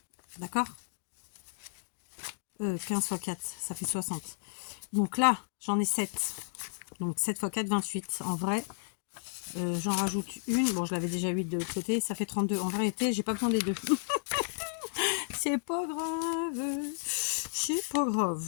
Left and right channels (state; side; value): silent; right; digital silence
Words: D'accord 15 x 4, ça fait 60. Donc là, j'en ai 7. Donc 7 x 4, 28. En vrai, j'en rajoute une. Bon, je l'avais déjà 8 de l'autre côté. Ça fait 32. En vérité, j'ai pas besoin des deux. C'est pas grave. C'est pas